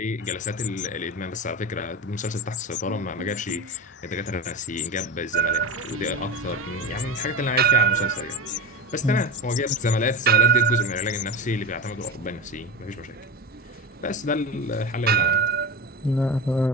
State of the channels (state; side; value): normal; both; correlation 0.24